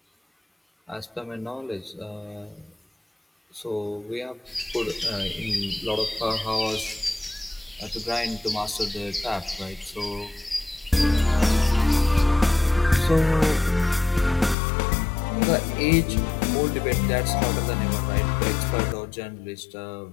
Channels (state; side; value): drops out; right; at 14.6 s